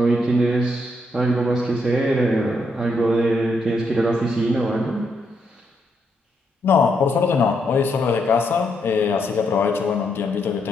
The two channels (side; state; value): both; normal; correlation 0.77